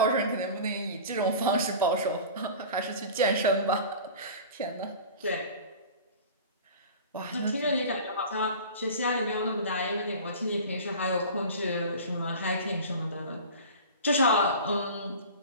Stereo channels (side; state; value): both; inverted; correlation -0.37